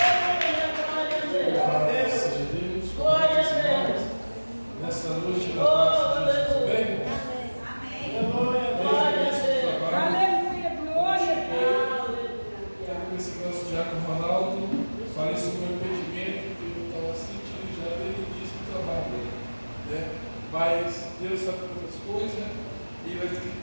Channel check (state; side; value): inverted; both; correlation -1.00